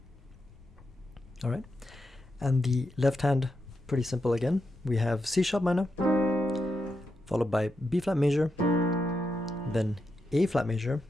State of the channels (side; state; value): both; normal; correlation 0.85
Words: All right, and the left hand, pretty simple again. We have C sharp minor, followed by B flat major, then A flat major,